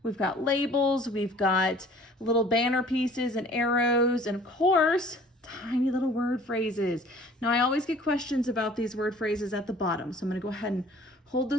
We've got labels, we've got little banner pieces and arrows, and of course, tiny little word phrases. Now, I always get questions about these word phrases at the bottom, so I'm going to go ahead and hold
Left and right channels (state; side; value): normal; both; correlation 0.51